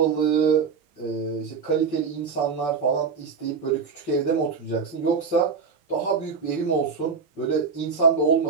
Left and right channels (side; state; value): left; quieter; 5.6 dB